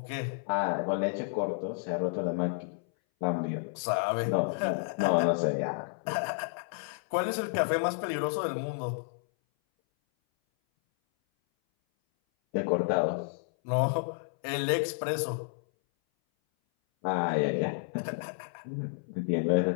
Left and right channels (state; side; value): silent; right; 57 dB below the other